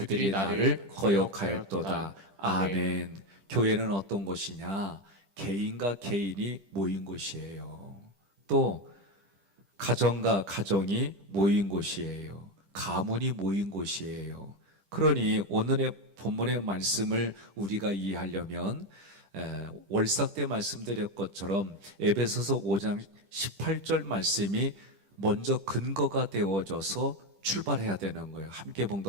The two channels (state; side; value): late; left; 10 ms